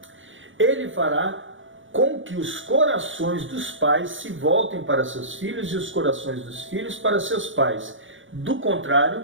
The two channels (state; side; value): late; left; 0.56 ms